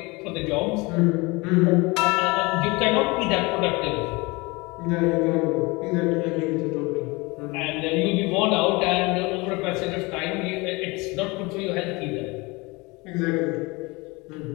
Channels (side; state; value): right; quieter; 25.1 dB